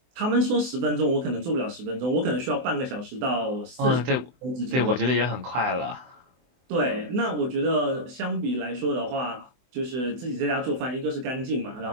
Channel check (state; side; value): late; left; 23 ms